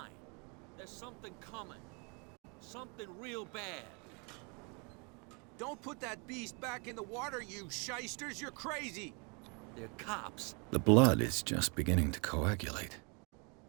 There's something coming. Something real bad. Don't put that beast back in the water, you shysters. You're crazy. They're cops. The blood is just beginning to coagulate.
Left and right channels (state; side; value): quieter; left; 32.9 dB